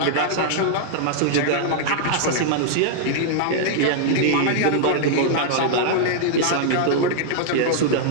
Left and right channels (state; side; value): different; both; correlation -0.01